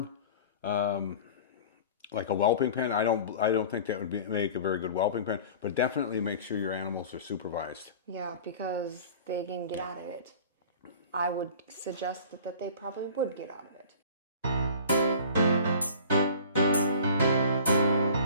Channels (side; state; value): both; inverted; correlation -0.42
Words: like a whelping pen. I don't think that would make a very good whelping pen. But definitely make sure your animals are supervised. Yeah, because they can get out of it. I would suggest that they probably would get out of it.